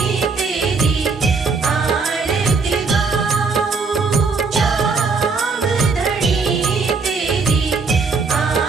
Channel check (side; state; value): left; quieter; 4.5 dB